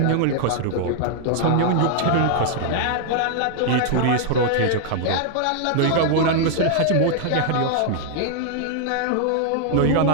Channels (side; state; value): both; different; correlation 0.00